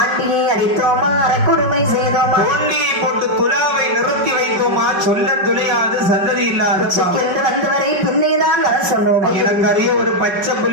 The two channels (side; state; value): left; late; 5.2 ms